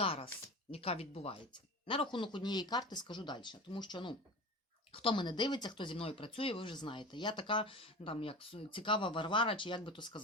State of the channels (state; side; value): normal; both; correlation 0.32